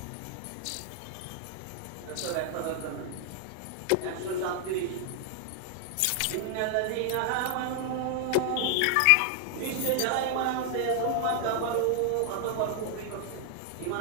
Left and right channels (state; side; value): different; both; correlation 0.00